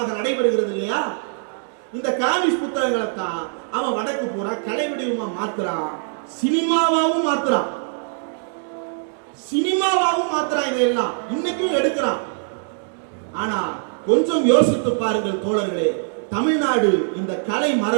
நடைபெறுகிறது இல்லையா? இந்த காமிக்ஸ் புத்தகங்களை தான் அவன் வடக்கு பூரா கலை வடிவமா மாத்துறான், சினிமாவாவும் மாத்துறான், இதையெல்லாம் இன்னைக்கும் எடுக்கிறான். ஆனா கொஞ்சம் யோசித்து பாருங்கள் தோழர்களே, தமிழ்நாடு இந்த கலை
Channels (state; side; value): silent; left; 60 dB below the other